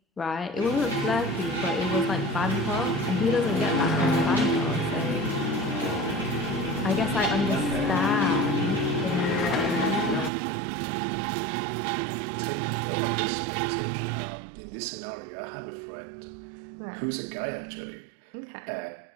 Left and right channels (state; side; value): drops out; left; at 10.3 s